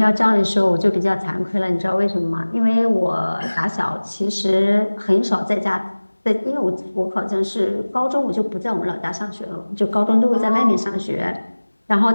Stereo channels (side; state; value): both; inverted; correlation -1.00